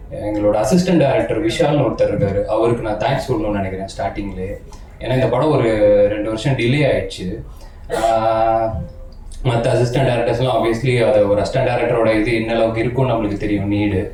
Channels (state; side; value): identical; both; correlation 1.00